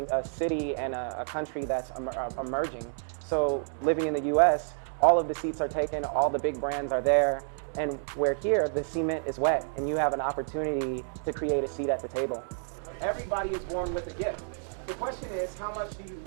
a city and a country that's emerging. So living in the US, all of the seats are taken, all the big brands are there, and where here, the cement is wet, and you have an opportunity to create a seat at the table. Everybody is born with a gift. The question is, how much do you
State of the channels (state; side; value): silent; left; digital silence